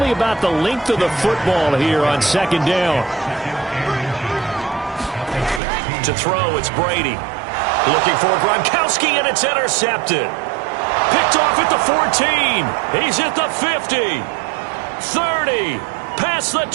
about the length of the football here on second down. To throw, it's Brady. Looking for Gronkowski, and it's intercepted. Picked off at the 14. He's at the 50. 30. Past the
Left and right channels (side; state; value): left; drops out; at 5.6 s